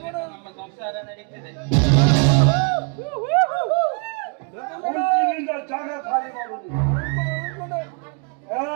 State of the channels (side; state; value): left; quieter; 38.0 dB